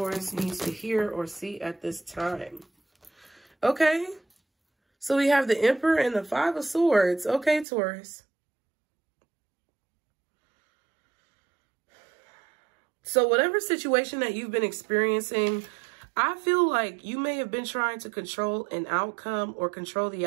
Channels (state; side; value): drops out; left; at 7.7 s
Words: needs to hear or see at this time? Okay. So we have the Emperor and the Five of Swords. Okay, Taurus. So whatever situation that you've been experiencing, I feel like you may have been trying to control an outcome or control the